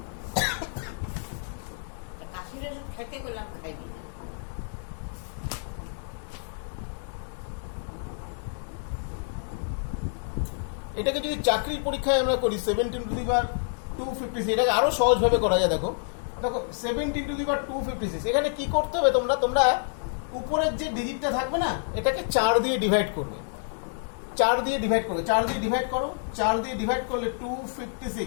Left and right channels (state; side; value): silent; right; digital silence